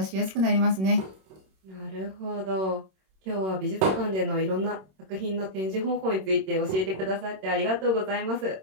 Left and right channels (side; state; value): left; late; 26 ms